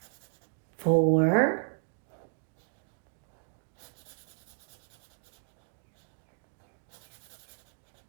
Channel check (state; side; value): silent; left; digital silence